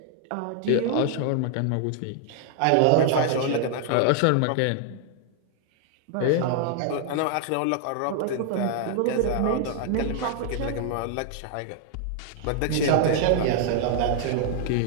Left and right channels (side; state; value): both; different; correlation 0.00